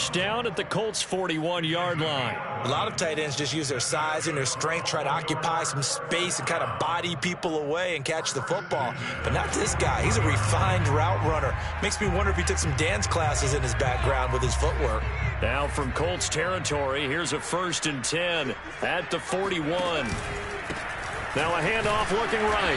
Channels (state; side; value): identical; both; correlation 1.00